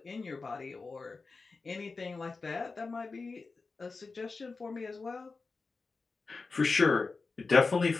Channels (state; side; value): quieter; right; 4.1 dB